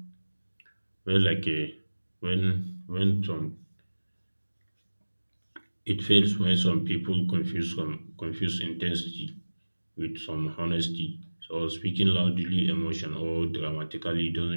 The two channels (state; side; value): inverted; both; correlation -1.00